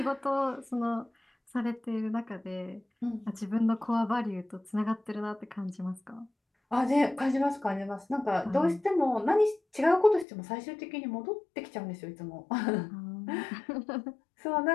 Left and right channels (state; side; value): drops out; right; at 10.2 s